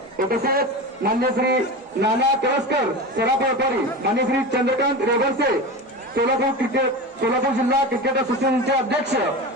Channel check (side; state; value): both; normal; correlation 0.26